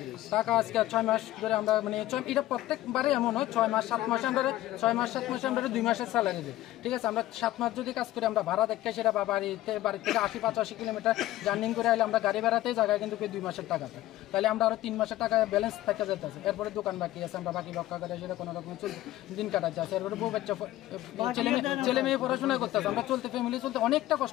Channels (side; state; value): right; quieter; 15.3 dB